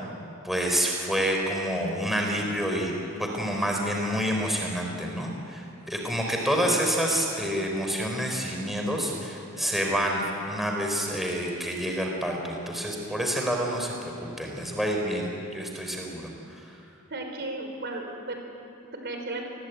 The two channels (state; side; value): normal; both; correlation 0.57